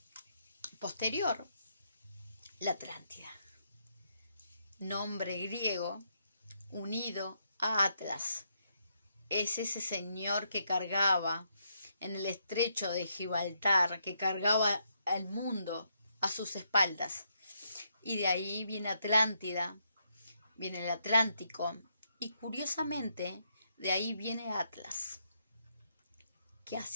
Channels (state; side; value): inverted; both; correlation -0.77